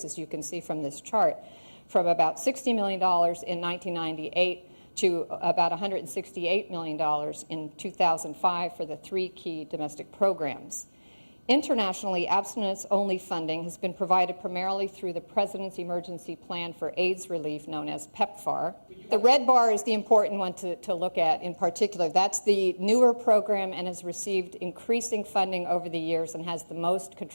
as you can see from this chart, from about $60 million in 1998 to about $168 million in 2005 for the three key domestic programs. Internationally, abstinence-only funding has been provided primarily through the President's Emergency Plan for AIDS Relief, known as PEPFAR. The red bar is the important one to look at in particular. That's the newer program and has received increasing funding over the years and has the most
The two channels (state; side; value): inverted; both; correlation -1.00